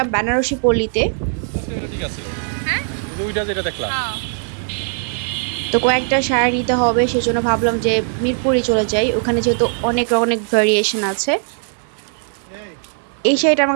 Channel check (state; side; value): silent; left; digital silence